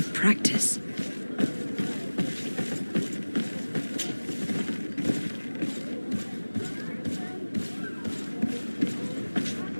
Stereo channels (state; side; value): inverted; both; correlation -1.00